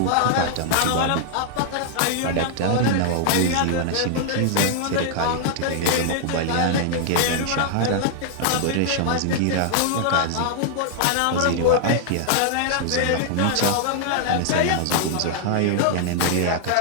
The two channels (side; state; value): both; different; correlation -0.01